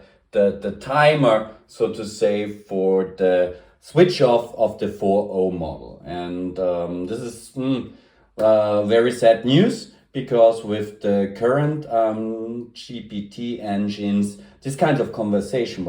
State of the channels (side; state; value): both; identical; correlation 1.00